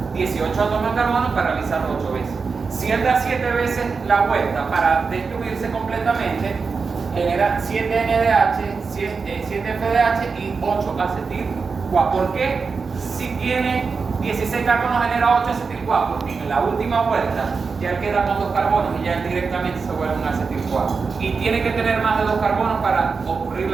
18 átomos de carbono para realizarlo 8 veces. Si él da 7 veces la vuelta para destruirse completamente, genera 7 NADH, 7 FADH y 8 acetil-CoA. ¿Por qué? Si tiene 16 carbonos genera 8 acetil-CoA, porque en la última vuelta ya él queda con 2 carbonos y ya él directamente se vuelve un acetil-CoA. Y tiene que tener más de 2 carbonos para ocurrir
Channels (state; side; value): quieter; left; 4.9 dB